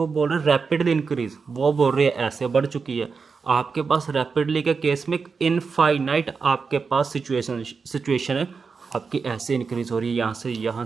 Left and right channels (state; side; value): quieter; left; 5.1 dB